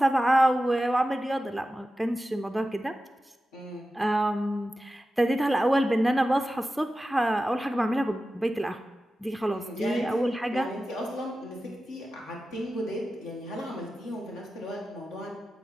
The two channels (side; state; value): both; normal; correlation 0.93